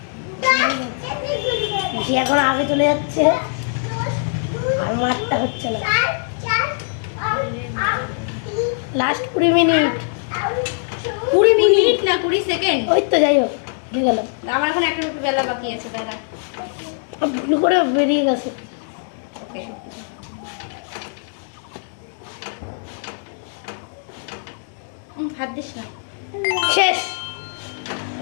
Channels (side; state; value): right; silent; digital silence